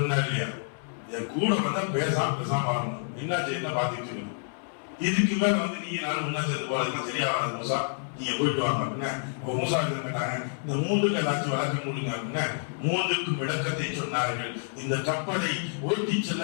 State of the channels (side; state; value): right; silent; 59 dB below the other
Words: இல்லையா, என் கூட வந்தா பேசாம வரணும். என்னாச்சு, என்ன பாத்துட்டு இருக்கணும். இதுக்கு மேல வந்து நீங்க நானும் முன்னா சேர்ந்து போறதுக்கு சரியா வராது மூசா, நீங்க போயிட்டு வாங்க அப்படின்னா. மூசா கேட்டாங்க, இந்த 3க்கு ஏதாச்சும் வழக்கம் கொடுங்க அப்படின்னா 3க்கும் விளக்கத்தை சொன்னார்கள். இந்த கப்பலை ஓட்டி